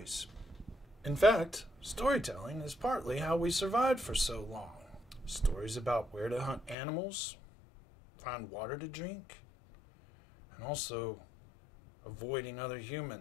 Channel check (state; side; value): drops out; right; at 6.8 s